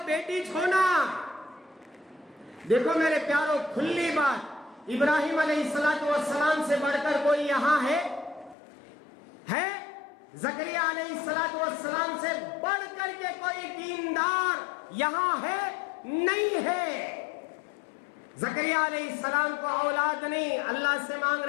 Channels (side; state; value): right; drops out; at 8.6 s